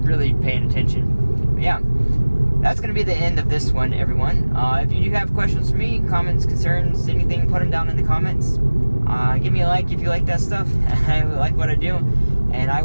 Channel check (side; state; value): both; inverted; correlation -1.00